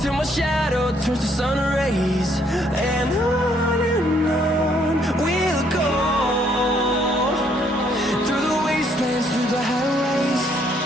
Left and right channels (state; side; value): normal; both; correlation 0.68